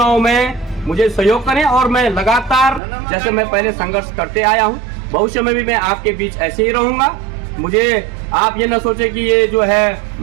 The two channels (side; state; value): left; drops out; at 2.8 s